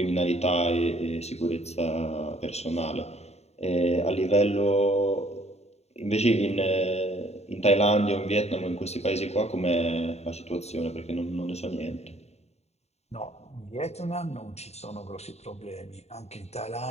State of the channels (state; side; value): late; right; 0.31 ms